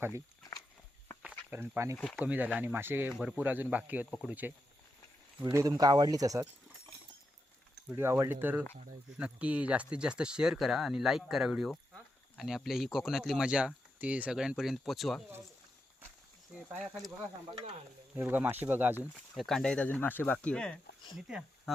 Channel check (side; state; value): both; normal; correlation 0.86